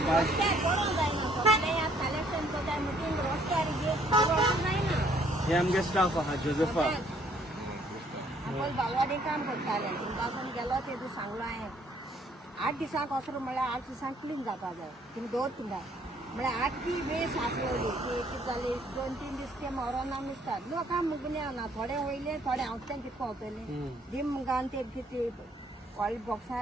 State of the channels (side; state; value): both; normal; correlation 0.63